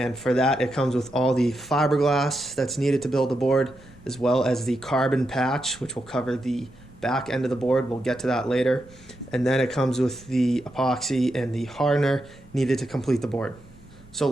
for that, it comes with all the fiberglass that's needed to build the board, as well as the carbon patch, which will cover the back end of the board. We'll get to that later. And then it comes with the epoxy and the hardener needed to complete the board. So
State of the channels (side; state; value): both; normal; correlation 0.85